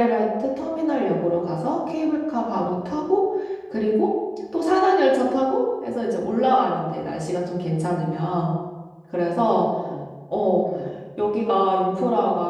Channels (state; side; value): identical; both; correlation 1.00